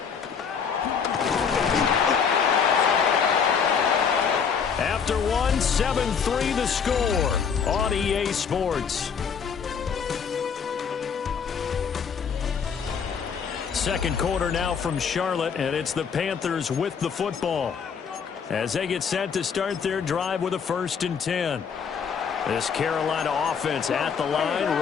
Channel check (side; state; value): right; quieter; 6.6 dB